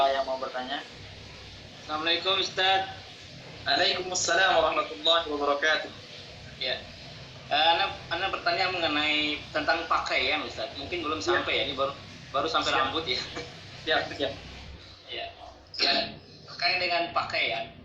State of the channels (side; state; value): both; identical; correlation 1.00